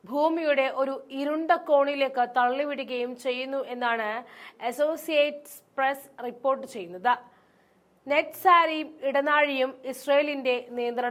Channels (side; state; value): both; identical; correlation 1.00